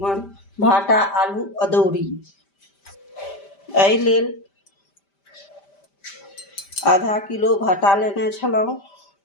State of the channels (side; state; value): right; late; 5.1 ms